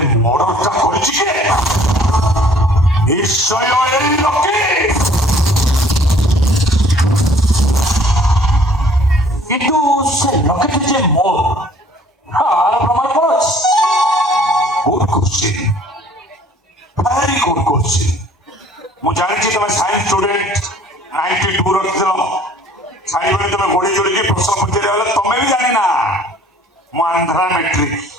ମର୍ଡରଟା କରିଛି କିଏ ନିଶ୍ଚୟ ଏଇ ଲକେଟ କିନ୍ତୁ ସେ ଲକେଟ ଯେ ମୋର ଆର ପ୍ରମାଣ କ'ଣ ଅଛି good question very good question ମୁଁ ଜାଣିଛି ତମେ ସାଇନ୍ସ ଷ୍ଟୁଡେଣ୍ଟ 92 ରଖିଥିଲ ସାଇବେଳେ ତମେ ଗୋଡ଼ି ଯୋଡ଼ିକି ପ୍ରଶ୍ନ ପଚାରିବା ବେଳେ ତମେ ବି ଜାଣିନା ମୁଁ ଆନ୍ଧ୍ରା ମେଟ୍ରିକ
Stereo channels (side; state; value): both; normal; correlation 0.56